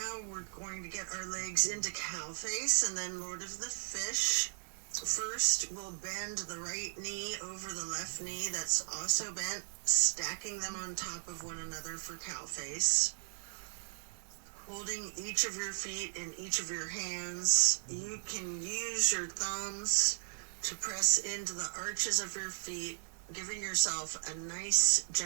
we're going to get our legs into cow face and then Lord of the Fish. First, we'll bend the right knee over the left knee that's also bent, stacking them on top of one another for cow face. Holding each of your feet in each of your hands, you can use your thumbs to press into the arches of your feet, giving yourself a nice,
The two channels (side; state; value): left; silent; digital silence